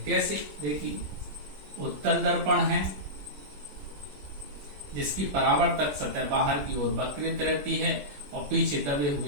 कैसे? देखिए, उत्तल दर्पण है जिसकी परावर्तक सतह बाहर की ओर वक्रित रहती है और पीछे दबे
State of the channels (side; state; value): left; late; 21 ms